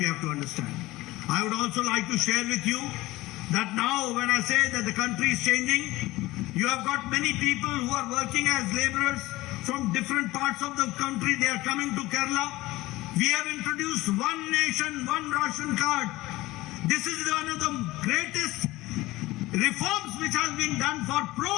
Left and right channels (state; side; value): quieter; right; 18.9 dB